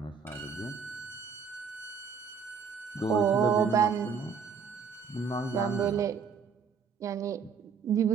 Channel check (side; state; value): left; quieter; 6.1 dB